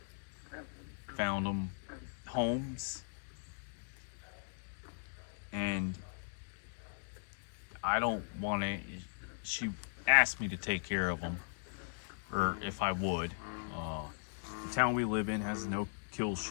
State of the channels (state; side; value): silent; right; digital silence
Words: found them homes. And I don't want to, she asked me to take care of them, or if I would. The town we live in has no kill